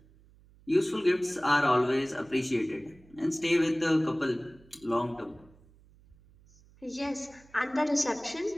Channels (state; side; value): noise; right; hum, 27 dB below the sound